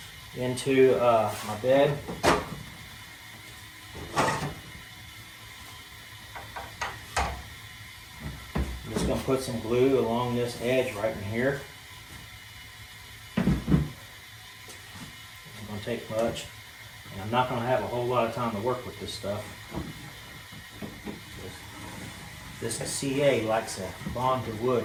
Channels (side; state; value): both; identical; correlation 1.00